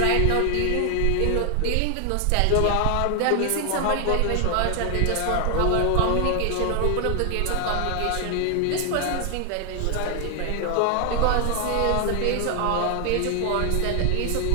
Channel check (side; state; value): both; different; correlation 0.00